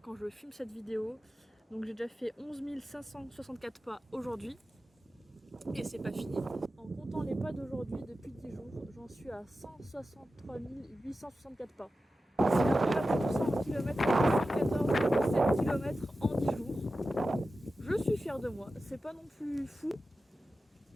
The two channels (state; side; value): normal; both; correlation 0.93